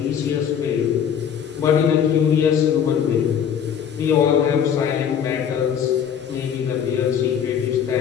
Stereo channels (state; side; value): quieter; right; 8.3 dB